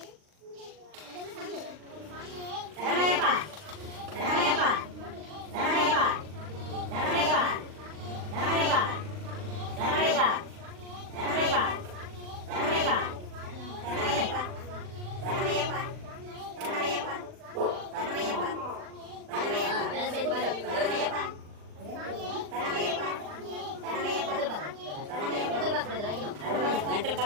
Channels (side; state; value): left; late; 39 ms